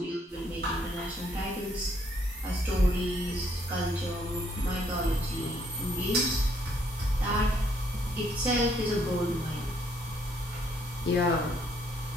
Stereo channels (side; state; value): both; normal; correlation 0.69